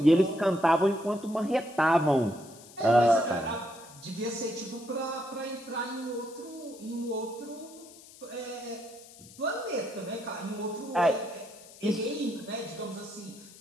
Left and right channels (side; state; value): left; noise; hiss, 20 dB below the sound